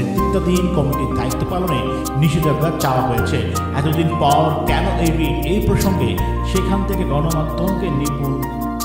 কমিটির দায়িত্ব পালনে নিষেধাজ্ঞা চাওয়া হয়েছে। এতদিন পর কেন এই রিট, এই প্রসঙ্গে সেখান থেকে গণমাধ্যমকে নিপুণ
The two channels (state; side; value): identical; both; correlation 1.00